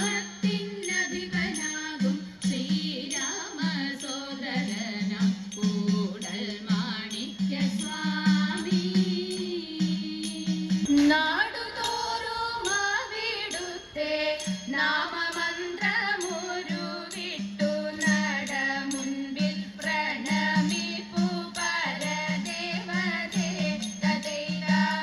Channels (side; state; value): both; identical; correlation 1.00